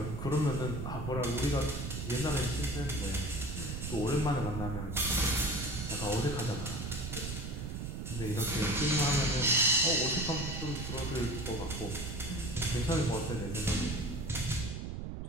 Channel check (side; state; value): right; noise; rumble, 5 dB below the sound